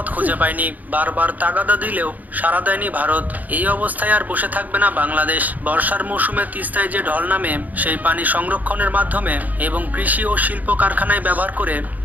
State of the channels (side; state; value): left; late; 0.080 ms